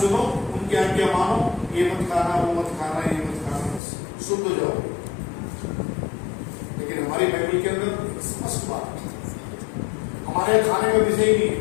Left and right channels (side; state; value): right; drops out; at 3.8 s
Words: उनकी आज्ञा मानो, ये मत खाना वो मत खाना ये मत खाना, बस शुद्ध हो जाओ। लेकिन हमारी बाइबल के अंदर स्पष्ट बात है, हमारे खाने का विषय ही नहीं है।